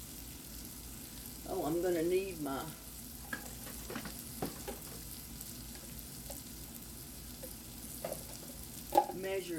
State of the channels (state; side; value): identical; both; correlation 1.00